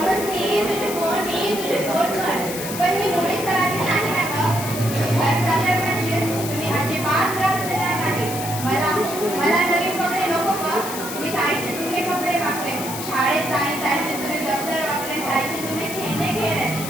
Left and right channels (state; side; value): noise; left; hiss, 8 dB below the sound